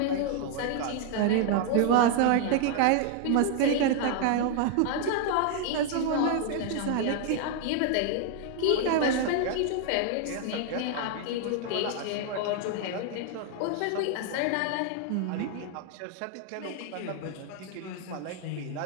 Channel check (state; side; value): different; both; correlation 0.00